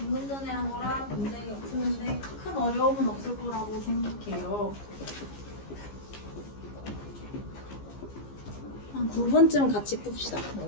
전에 한 거랑 문제가 푸는데 큰 어려움은 없을 거라고 생각해요. 한 9분쯤 같이 풉시다.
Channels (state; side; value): late; right; 15 ms